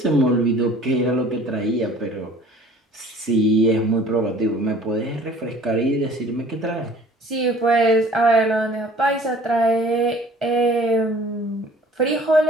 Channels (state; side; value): normal; both; correlation 0.50